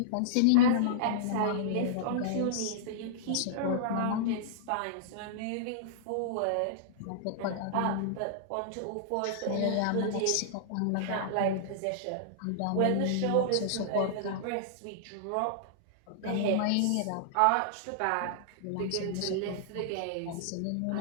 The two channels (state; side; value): different; both; correlation -0.02